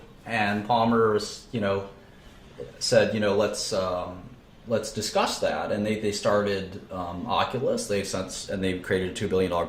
And Palmer said, let's discuss that. And they started Oculus. They created a $2 billion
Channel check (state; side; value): identical; both; correlation 1.00